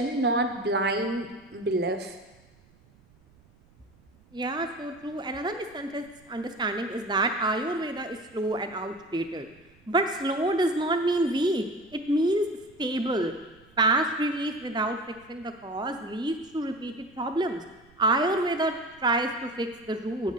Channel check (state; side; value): noise; right; rumble, 29 dB below the sound